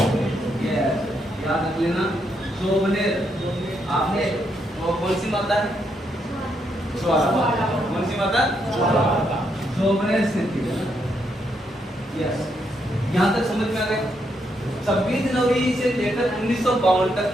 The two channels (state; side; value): normal; both; correlation 0.78